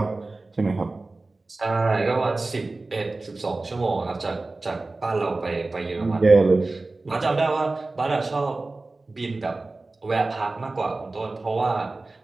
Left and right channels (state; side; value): quieter; left; 3.3 dB